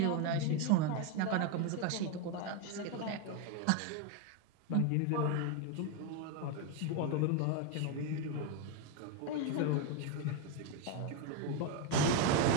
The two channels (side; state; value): both; different; correlation 0.02